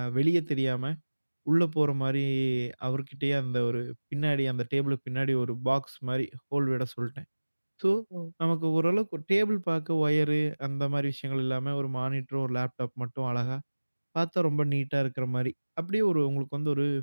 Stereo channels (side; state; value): both; inverted; correlation -1.00